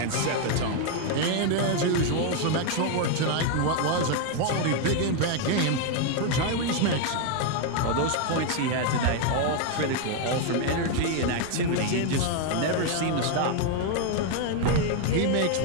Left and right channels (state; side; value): different; both; correlation 0.01